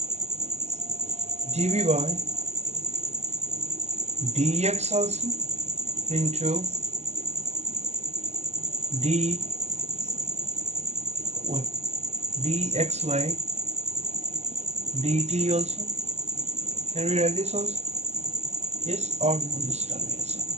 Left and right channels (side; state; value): left; late; 0.32 ms